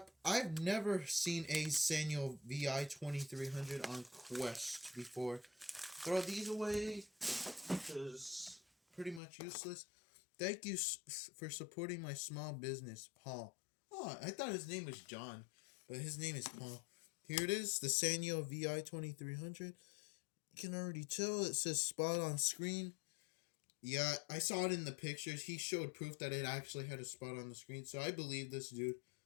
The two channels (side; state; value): right; drops out; at 9.2 s